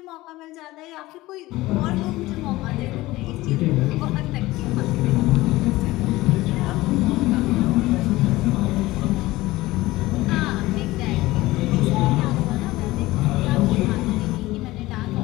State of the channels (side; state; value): right; quieter; 18.5 dB